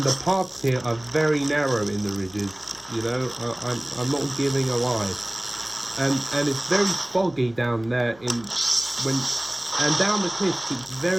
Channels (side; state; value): left; noise; hum, 26 dB below the sound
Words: the paths here are very narrow in the ridges, you know. I'm not giving a lie, and it's very foggy down there and down the cliffs it's